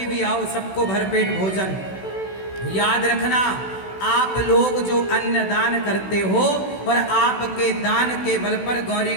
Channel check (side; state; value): right; late; 16 ms